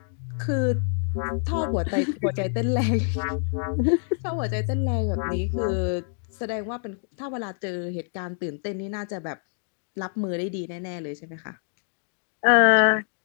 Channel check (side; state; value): right; silent; 61 dB below the other